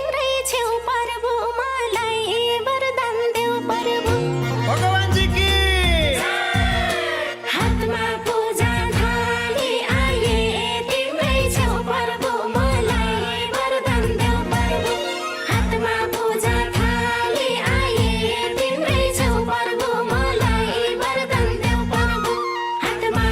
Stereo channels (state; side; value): identical; both; correlation 1.00